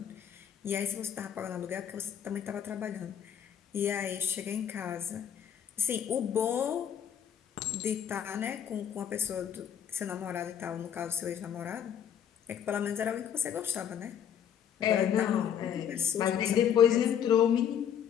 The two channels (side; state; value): right; quieter; 9.0 dB